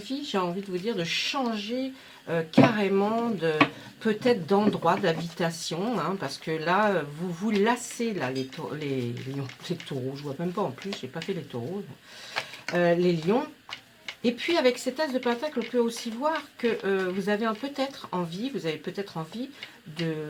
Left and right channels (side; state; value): both; identical; correlation 1.00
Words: j'ai envie de vous dire, de changer carrément peut-être d'endroit d'habitation, hein, parce que là, vous vous lassez, là, les taureaux, je vois même pas en plus, j'ai pas fait les taureaux, les lions. Et puis avec cet as de pentacle, on peut aussi voir que vous avez peut-être envie,